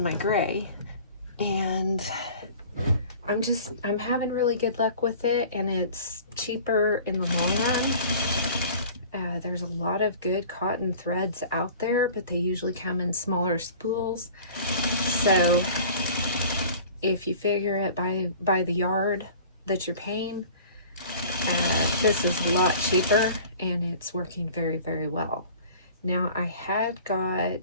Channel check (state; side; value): inverted; both; correlation -0.44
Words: my gray. And I'm having really good luck with it. And it's cheaper in the long run. There's a lot of good cotton threads out there, but they usually come in smaller spools. So if you figure it by the yard that you're paying, this is a lot cheaper and it's working very, very well. Now I had